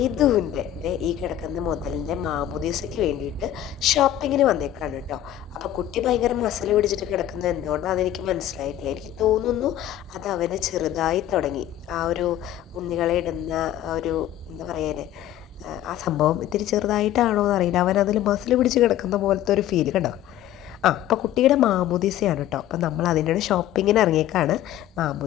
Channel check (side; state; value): right; quieter; 12.1 dB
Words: ഈ കിടക്കുന്ന മുതലിൻ്റെ മാമോദീസയ്ക്ക് വേണ്ടിയിട്ട് ഷോപ്പിങ്ങിന് വന്നേക്കാണ് കേട്ടോ. അപ്പോൾ കുട്ടി ഭയങ്കര മസിൽ പിടിച്ചിട്ട് കിടക്കുന്നത് എന്തുകൊണ്ടാണെന്ന് എനിക്ക് മനസ്സിലായിട്ടില്ല. എനിക്ക് തോന്നുന്നു അത് അവന് ചെറുതായി തുടങ്ങി. ആ ഒരു ഉണ്ണികളെ ഇടുന്ന ഒരു എന്താ പറയാന് ആ സംഭവം ഇത്തിരി ചെറുതായിട്ടാണോ എന്നറിയില്ല. അവൻ അതിൽ മസിൽ പിടിച്ച് കിടക്കുന്ന പോലത്തെ ഒരു ഫീൽ കണ്ടോ. അപ്പോൾ കുട്ടിയുടെ മാമോദീസയാണ് കേട്ടോ. അപ്പോൾ നമ്മൾ അതിൻ്റെ ഷോപ്പിങ്ങിന് ഇറങ്ങിയേക്കാണ്.